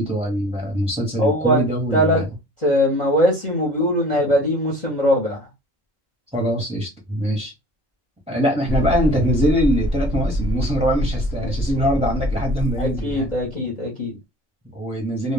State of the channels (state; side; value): normal; both; correlation 0.47